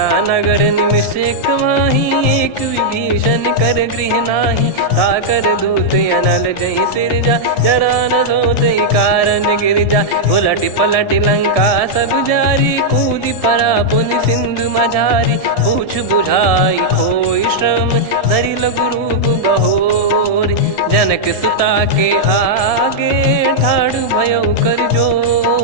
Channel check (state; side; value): late; right; 1.7 ms